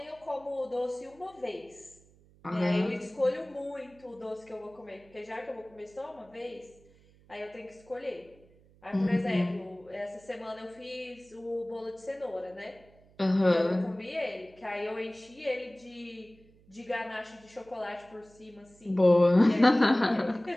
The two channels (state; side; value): noise; right; hum, 28 dB below the sound